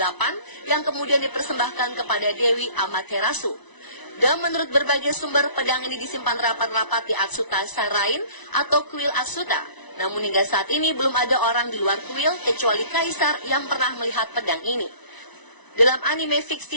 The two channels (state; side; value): late; right; 1.0 ms